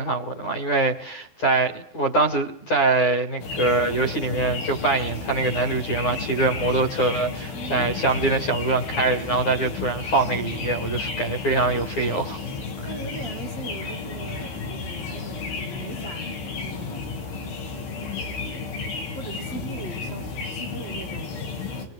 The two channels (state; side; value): late; right; 12 ms